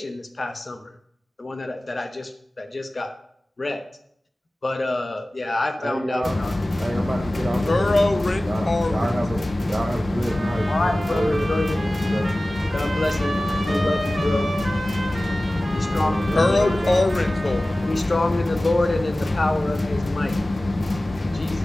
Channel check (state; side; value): normal; both; correlation 0.97